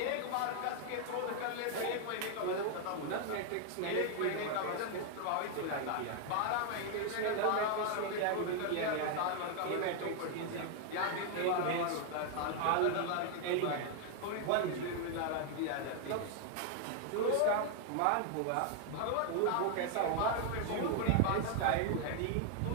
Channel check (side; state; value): both; different; correlation 0.00